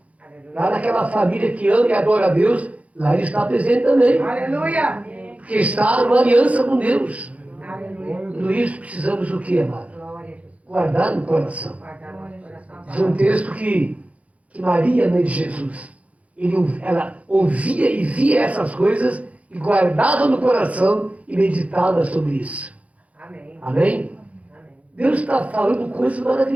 Lá naquela família que ama e adora a Deus, lá ele está presente também. Aleluia. Porque está numa aliança com Deus. Aleluia. Tudo isso precisamos o quê, amado? Glória a Jesus. Guardar no coração. Guardar nosso coração. Diz um texto que Maria, mãe de Jesus, ela ouvia e via essas coisas e guardava no coração e meditava sobre isso. Amém. Amém? Amém. Deus está falando coisas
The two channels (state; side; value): late; left; 0.066 ms